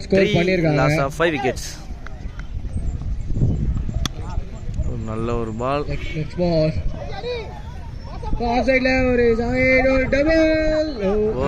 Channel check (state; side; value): identical; both; correlation 1.00